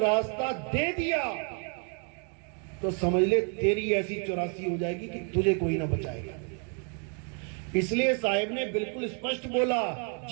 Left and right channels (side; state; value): left; quieter; 39.8 dB